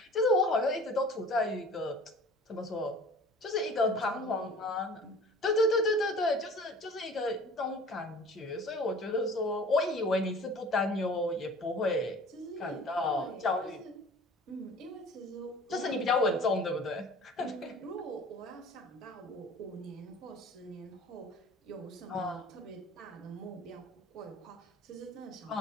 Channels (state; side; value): normal; both; correlation 0.45